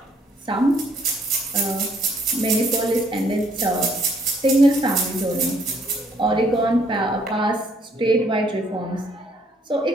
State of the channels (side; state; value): both; normal; correlation 0.66